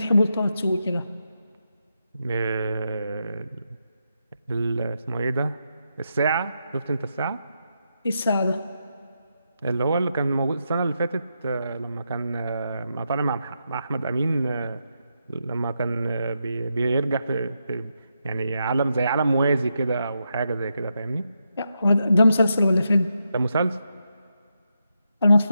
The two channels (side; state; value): both; inverted; correlation -0.84